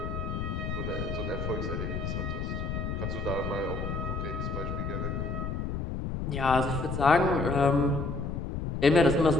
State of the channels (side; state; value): left; noise; rumble, 3 dB below the sound